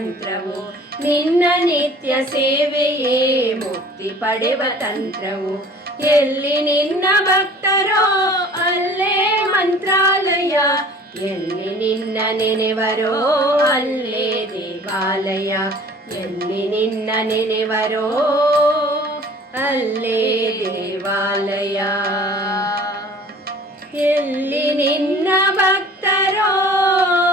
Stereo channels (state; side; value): normal; both; correlation 0.48